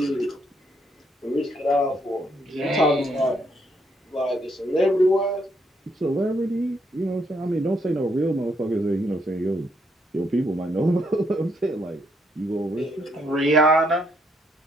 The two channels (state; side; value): normal; both; correlation 0.73